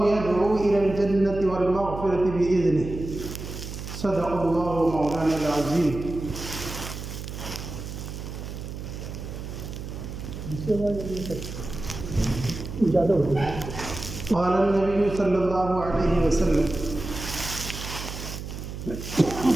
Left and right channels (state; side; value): noise; right; hum, 9 dB below the sound